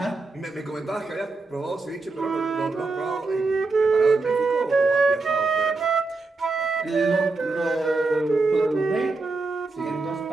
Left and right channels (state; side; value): quieter; left; 3.6 dB